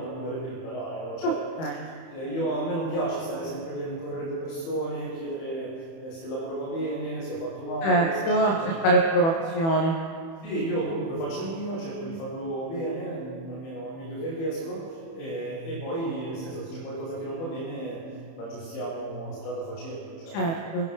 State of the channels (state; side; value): late; right; 30 ms